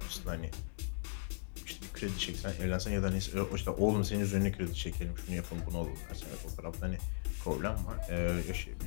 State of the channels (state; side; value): silent; right; digital silence